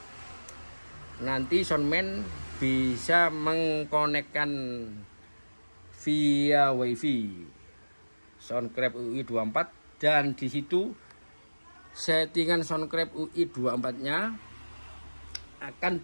nanti soundman bisa mengkonekkan via wifi Soundcraft UI24, dan di situ settingan Soundcraft UI24-nya akan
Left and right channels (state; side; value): inverted; both; correlation -1.00